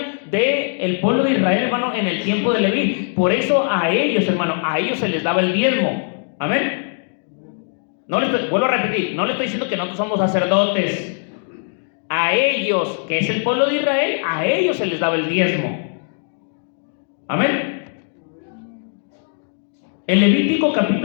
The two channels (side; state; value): right; silent; 58 dB below the other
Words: del pueblo de Israel, hermano, en el tiempo de Leví. Por eso a ellos, hermano, a ellos se les daba el diezmo. Amén. Vuelvo a repetir, no le estoy diciendo que nosotros somos sacerdotes. A ellos, que es el pueblo de Israel, a ellos se les daba el diezmo. Amén. En Levítico